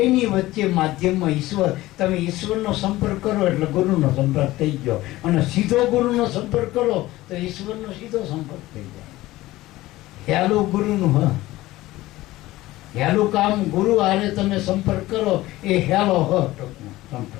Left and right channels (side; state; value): right; quieter; 17.5 dB